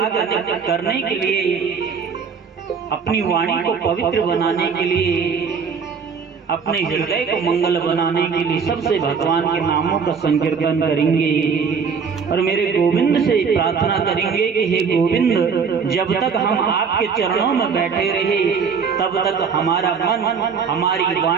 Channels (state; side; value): quieter; left; 6.0 dB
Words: करने के लिए अपनी वाणी को पवित्र बनाने के लिए अपने हृदय को मंगल बनाने के लिए सबसे भगवान के नामों का संकीर्तन करेंगे और मेरे गोविंद से प्रार्थना करेंगे कि हे गोविंद जब तक हम आपके चरणों में बैठे रहे तब तक हमारा मन हमारी